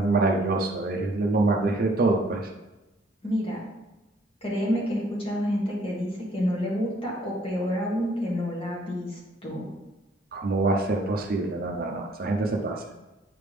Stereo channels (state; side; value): normal; both; correlation 0.62